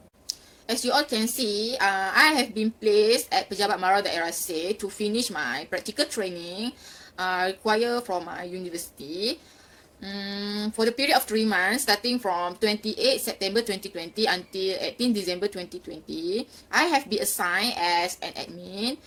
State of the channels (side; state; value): both; identical; correlation 1.00